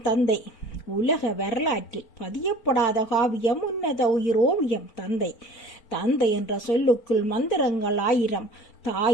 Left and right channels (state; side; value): late; right; 4.4 ms